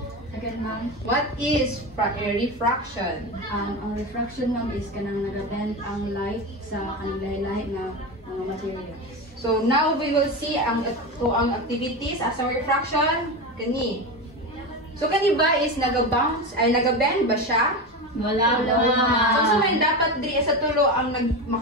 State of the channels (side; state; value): both; normal; correlation 0.20